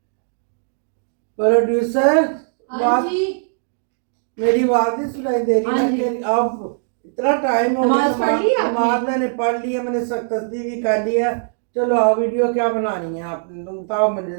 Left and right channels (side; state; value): left; silent; digital silence